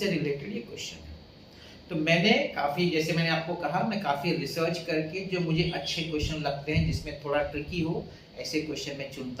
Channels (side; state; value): both; identical; correlation 1.00